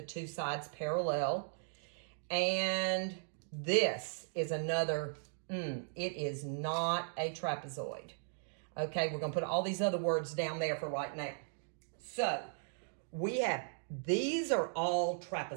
2 sides parallel. And this is another, it is not a trapezoid. Okay, we're going to put all these other words down there for right now. So, we have, these are all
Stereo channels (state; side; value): silent; left; digital silence